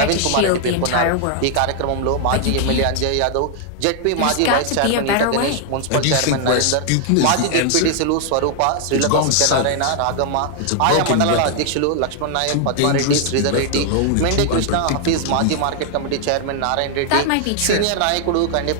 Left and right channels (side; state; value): both; different; correlation 0.00